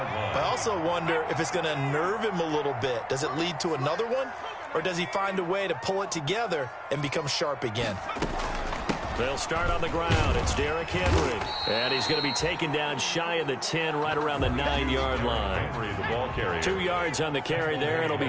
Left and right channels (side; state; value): both; identical; correlation 1.00